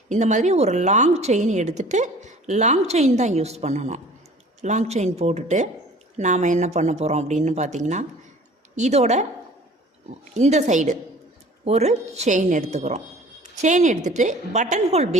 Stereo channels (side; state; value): both; normal; correlation 0.48